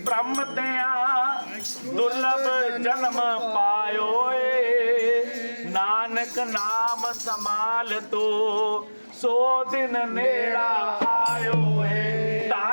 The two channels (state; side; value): inverted; both; correlation -1.00